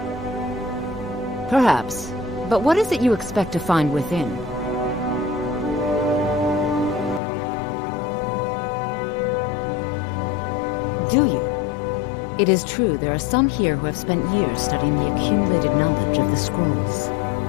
Perhaps, but what is it you expect to find within? Do you? It is true there are some here who have spent years studying the accumulated knowledge of the scrolls.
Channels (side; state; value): right; drops out; at 7.2 s